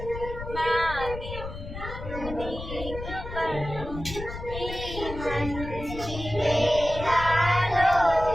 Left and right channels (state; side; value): noise; left; rumble, 9 dB below the sound